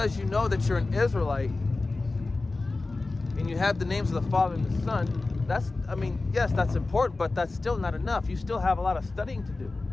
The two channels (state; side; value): quieter; right; 3.4 dB